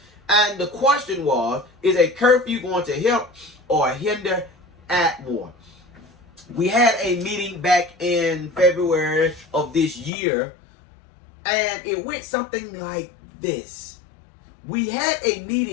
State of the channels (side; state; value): right; drops out; at 10.1 s